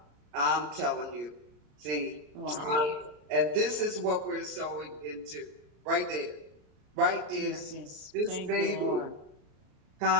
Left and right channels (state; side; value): late; left; 33 ms